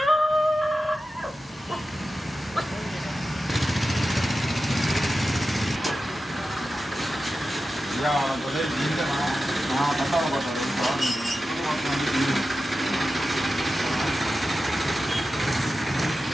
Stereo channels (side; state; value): both; normal; correlation 0.93